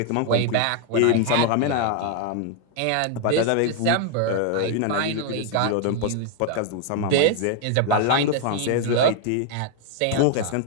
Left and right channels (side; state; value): both; different; correlation 0.00